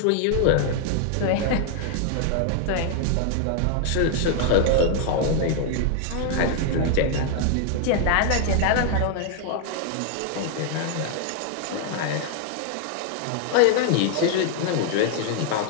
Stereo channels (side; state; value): both; different; correlation 0.00